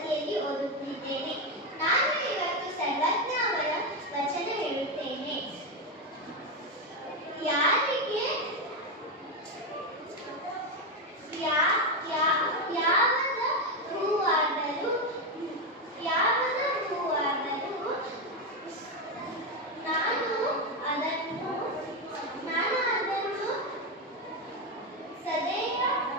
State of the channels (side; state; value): both; normal; correlation 0.09